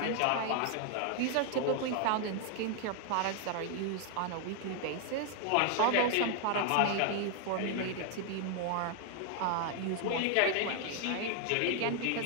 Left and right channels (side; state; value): both; different; correlation 0.00